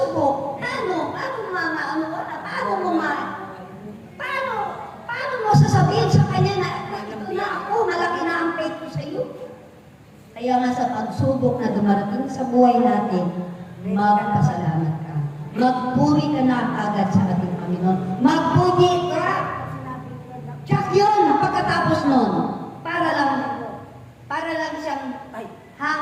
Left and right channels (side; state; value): both; identical; correlation 1.00